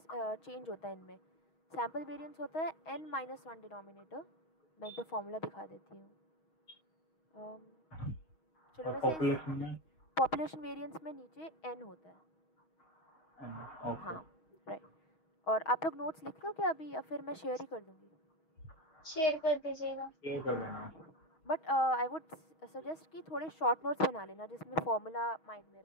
चेंज होता है इनमें. सैम्पल वेरिएंस होता है n-1 डिनोमिनेटर. मैं एक बार फॉर्मूला दिखा देती हूँ. चलो वैसे पॉपुलेशन वेरिएंस में नीचे n होता है. हाँ राइट. और आप लोग नोट्स लिख लो क्या अभी, या फिर मैं शेयर ही कर दूँगी? शेयर कर दीजिएगा. शेयर कर देना. बट आई वुड सजेस्ट कि थोड़े शॉर्ट नोट्स बना लेना जिसमें फॉर्मूला माइंड में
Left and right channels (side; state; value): right; late; 6.3 ms